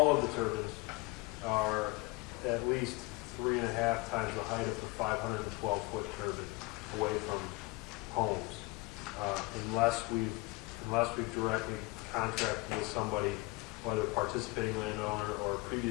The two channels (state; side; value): quieter; right; 24.6 dB